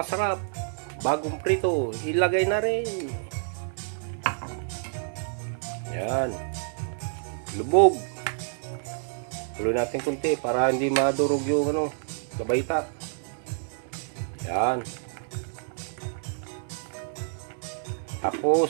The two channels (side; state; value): left; silent; digital silence